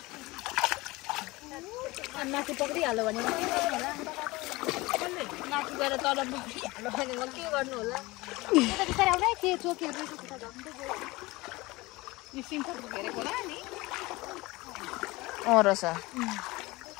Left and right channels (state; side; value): quieter; right; 21.7 dB